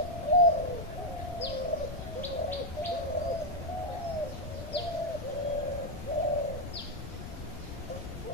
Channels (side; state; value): both; normal; correlation 0.02